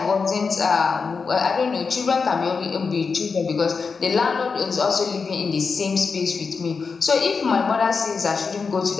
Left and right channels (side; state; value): right; quieter; 5.0 dB